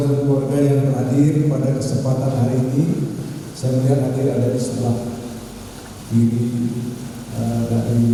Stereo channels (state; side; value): identical; both; correlation 1.00